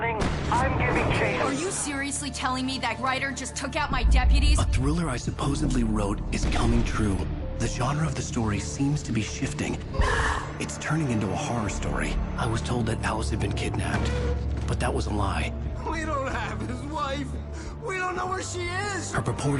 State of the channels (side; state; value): both; identical; correlation 1.00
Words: I'm giving chase. Are you seriously telling me that writer just took out my deputies? A thriller I supposedly wrote is coming true. The genre of the story seems to be shifting. It's turning into a horror story. I was told that Alice had been kidnapped, but that was a lie. We don't have his wife. We don't know where she is. Her